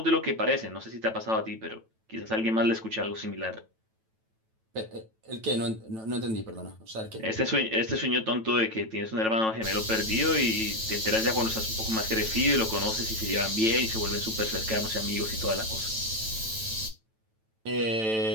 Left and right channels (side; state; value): left; late; 9.1 ms